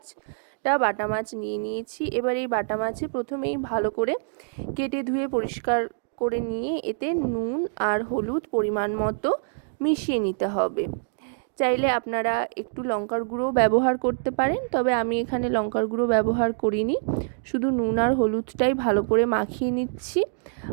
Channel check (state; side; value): silent; left; digital silence